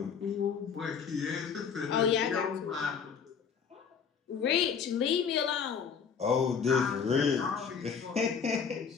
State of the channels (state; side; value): quieter; right; 6.6 dB